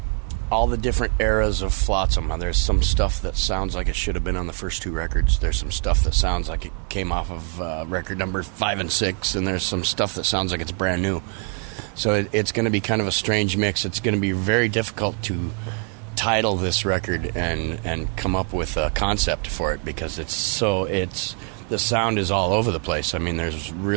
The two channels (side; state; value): left; quieter; 39.2 dB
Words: all the different eras of Flotsam. There's some stuff that sounds like it should have been on the first 2 records. There's some stuff that sounds like it came off of record number 5 and 6, and there's some stuff that sounds like it's brand new. So it's going to be kind of a strange mix. It's going to be very difficult to title this record and come up with a concept for it, because the sound is all over the place. I mean, there's